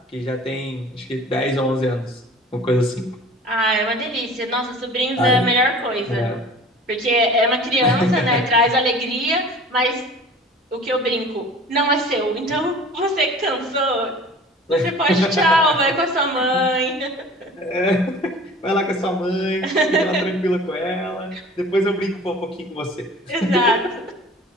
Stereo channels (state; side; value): normal; both; correlation 0.44